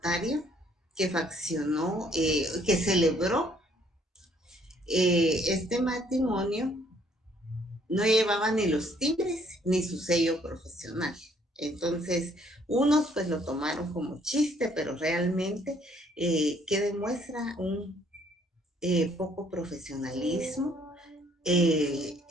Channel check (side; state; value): both; normal; correlation 0.64